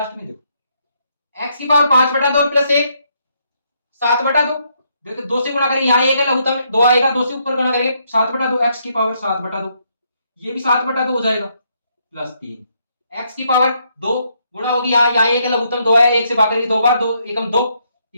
में, देखो x की पावर 5/2 प्लस 1 7/2, देखो 2 से गुणा करेंगे, यहाँ 1 है लघुत्तम 2 आएगा, 2 से ऊपर गुणा करेंगे 7/2, x की पावर 7/2, ये भी 7/2 हो जाएगा, प्लस 3 x की पावर 2 गुणा होगी, यहाँ 1 है लघुत्तम 2 आया, 1 से भाग करेंगे 2 बार, 2 एकम 2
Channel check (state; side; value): inverted; both; correlation -0.74